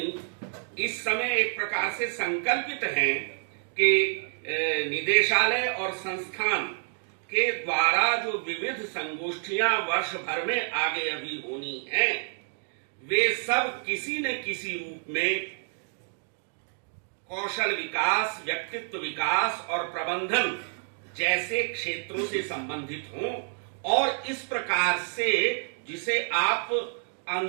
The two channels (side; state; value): left; silent; 59 dB below the other